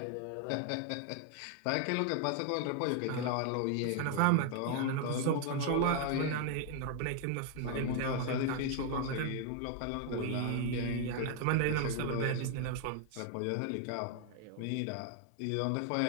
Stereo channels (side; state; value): both; different; correlation 0.00